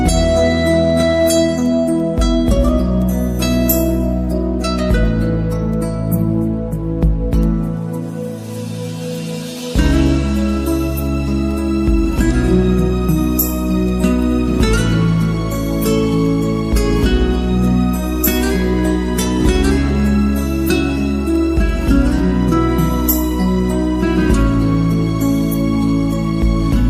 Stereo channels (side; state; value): both; identical; correlation 1.00